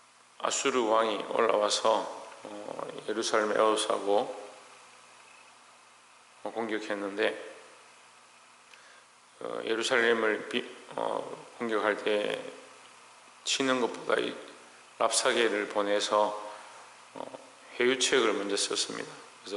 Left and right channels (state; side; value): identical; both; correlation 1.00